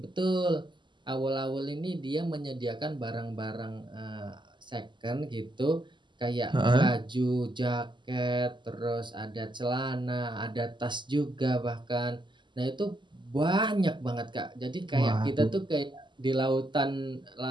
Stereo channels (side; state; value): left; late; 0.22 ms